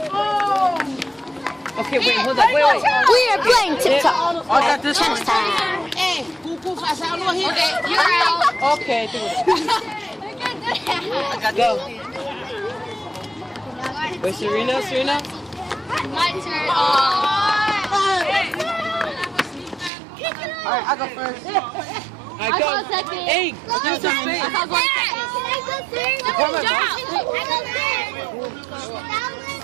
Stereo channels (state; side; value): drops out; left; at 19.9 s